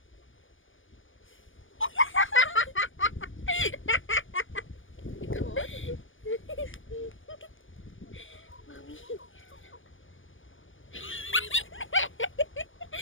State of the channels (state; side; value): late; right; 0.57 ms